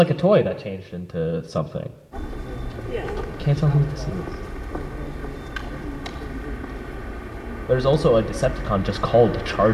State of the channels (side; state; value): both; identical; correlation 1.00